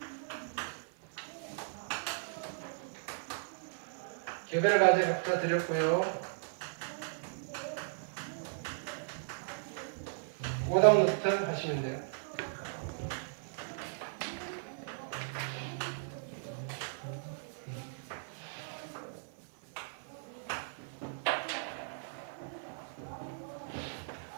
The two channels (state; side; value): silent; left; 53 dB below the other